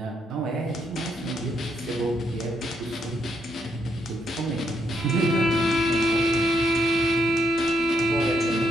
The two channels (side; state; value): both; normal; correlation 0.76